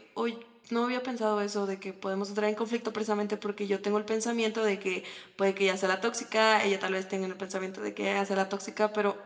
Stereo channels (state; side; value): identical; both; correlation 1.00